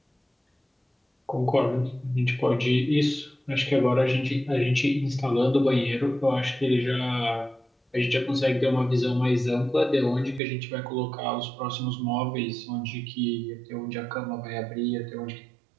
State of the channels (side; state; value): left; drops out; at 10.4 s